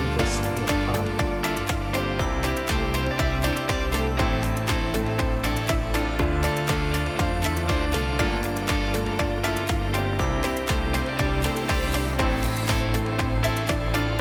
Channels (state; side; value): identical; both; correlation 1.00